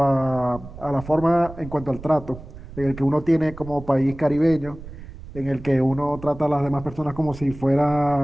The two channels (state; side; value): noise; right; rumble, 15 dB below the sound